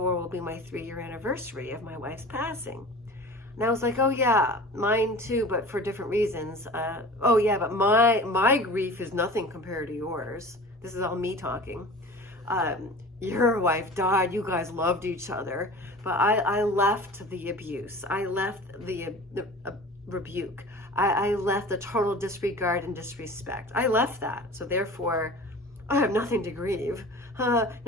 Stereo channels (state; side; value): normal; both; correlation 0.39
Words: will be my 3-year anniversary of my wife's passing. And I was like, oh yeah, mine too, but for different reasons. Oh yeah, but my grief is nothing compared to yours. This is all me talking. Your wife died, you guys loved each other, but I left the abuse. I left the rebuke. I left the total disregard and disrespect. I left that. So therefore, I have nothing to grieve.